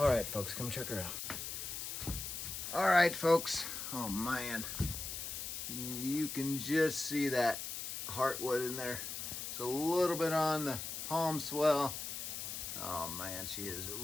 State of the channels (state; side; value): noise; left; hiss, 5 dB below the sound